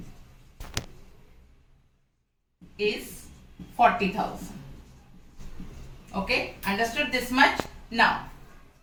is 40,000. Okay, understood this much? Now,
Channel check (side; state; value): both; identical; correlation 1.00